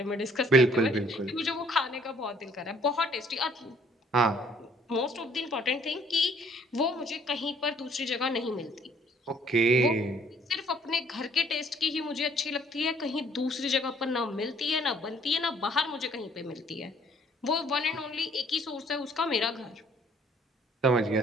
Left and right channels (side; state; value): both; normal; correlation 0.60